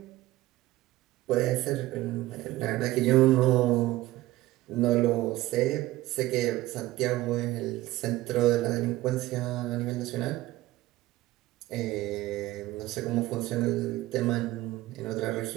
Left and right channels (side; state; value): left; quieter; 17.1 dB